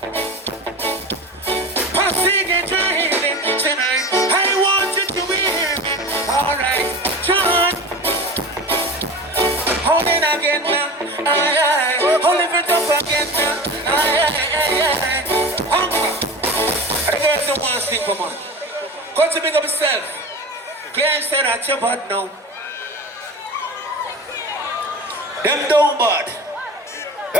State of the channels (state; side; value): normal; both; correlation 0.32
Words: Passing and driving tonight. I want you to hear me. All right, John. Hold it again now. Aye. Hold it up again now. Aye. Hunger. The girls don't want to sing for man. Kutchie, big up yourself. Claire said at your butt now. Them don't bad.